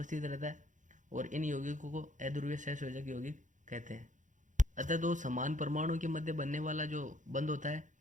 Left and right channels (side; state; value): left; late; 0.36 ms